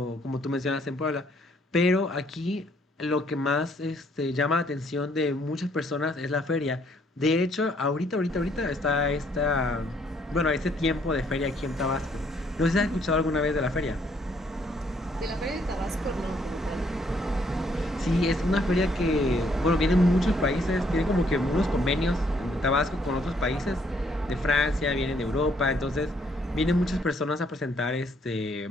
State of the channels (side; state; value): both; normal; correlation 0.67